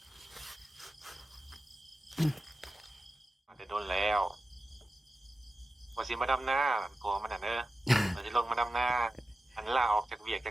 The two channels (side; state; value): both; normal; correlation 0.93